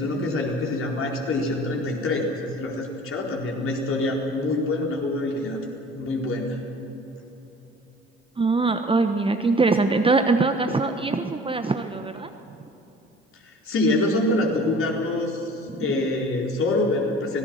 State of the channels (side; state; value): both; normal; correlation 0.46